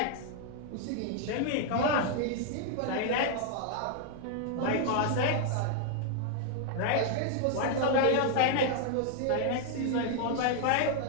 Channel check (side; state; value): both; different; correlation 0.00